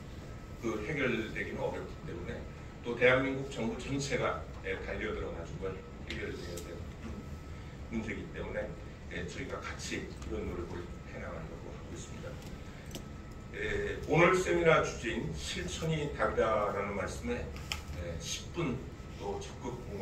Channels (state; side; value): identical; both; correlation 1.00